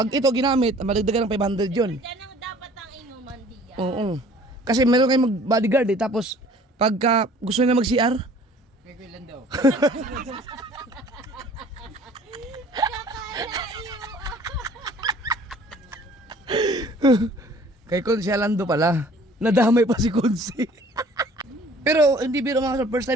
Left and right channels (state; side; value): normal; both; correlation 0.52